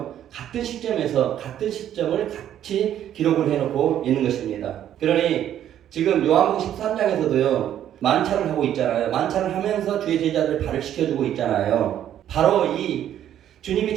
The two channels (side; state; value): left; quieter; 10.9 dB